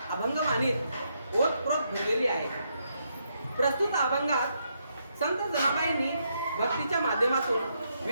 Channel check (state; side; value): inverted; both; correlation -0.78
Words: अभंगवाणीत ओतप्रोत भरलेली आहे. प्रस्तुत अभंगात संत जनाबाईंनी भक्तीच्या माध्यमातून